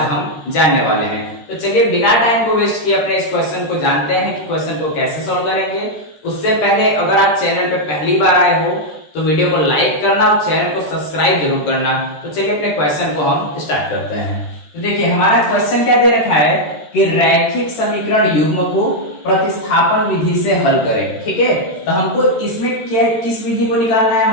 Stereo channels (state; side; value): late; right; 13 ms